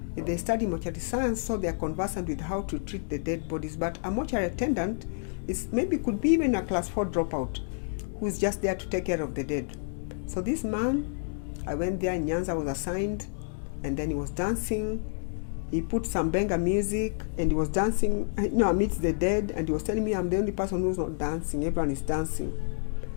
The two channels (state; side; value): silent; right; digital silence